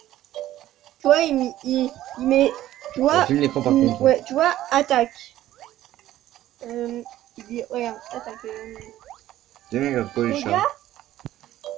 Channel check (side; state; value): left; quieter; 13.9 dB